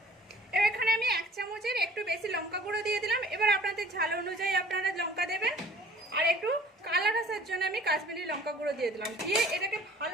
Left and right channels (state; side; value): normal; both; correlation 0.51